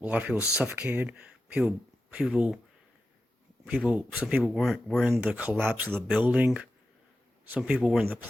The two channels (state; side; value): normal; both; correlation 0.91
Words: of people suffocated. Some people were in the collapse of the building. Some people were in the